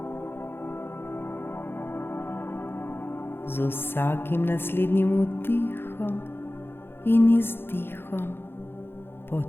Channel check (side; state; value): right; late; 0.11 ms